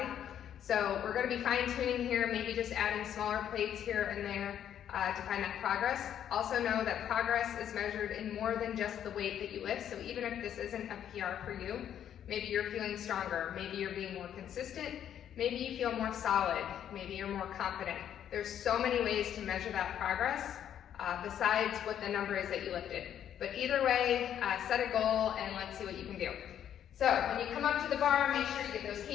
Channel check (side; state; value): right; quieter; 9.9 dB